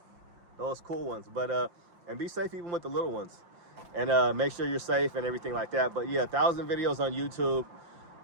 those cool ones. But and be safe even with the little ones, and make sure you're safe and everything like that. But yeah, 1,000 videos on YouTube.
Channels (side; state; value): left; late; 5.7 ms